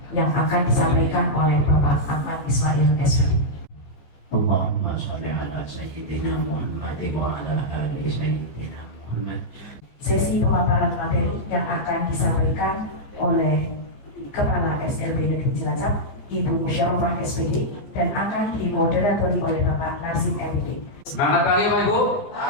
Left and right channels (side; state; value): right; late; 15 ms